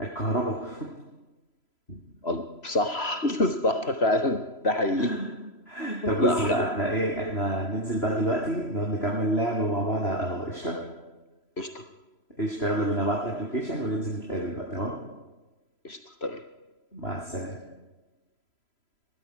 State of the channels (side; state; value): right; late; 3.0 ms